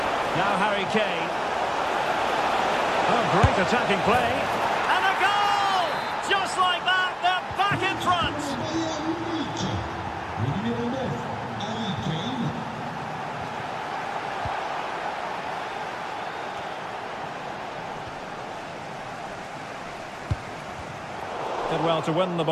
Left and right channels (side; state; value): both; identical; correlation 1.00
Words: Now Harry Kane. Oh, great attacking play. And a goal! Just like that, they're back in front. Did well to win the